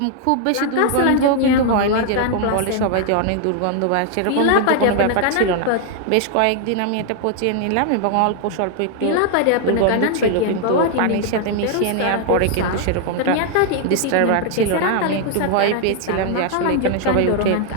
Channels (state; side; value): different; both; correlation 0.00